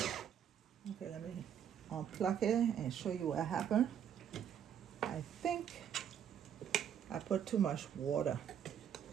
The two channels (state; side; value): quieter; left; 8.9 dB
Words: Okay, let me unplug it and show you what happened. I think I put too much water